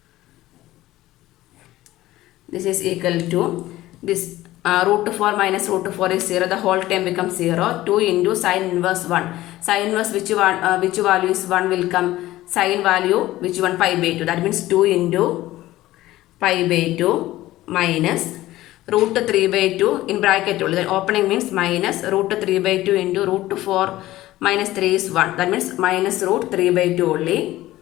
this is equal to this root 4 minus root 4 is 0, the whole term becomes 0. 2 into sin inverse 1. Sin inverse which value is 1 will come? Sin value which one? Pi by 2. That means 2 into pi by 2 minus root 3 by 2 in bracket only. Then opening means minus root 3 by 2 into root 4 minus 3 is 1. That means minus root 3 by 2 only.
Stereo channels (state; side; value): quieter; right; 16.2 dB